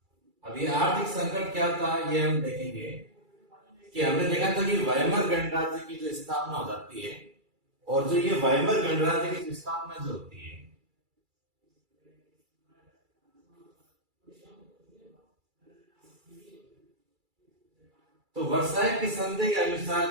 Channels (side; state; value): left; late; 2.3 ms